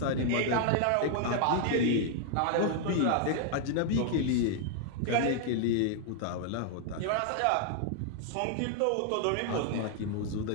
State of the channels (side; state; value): both; different; correlation 0.00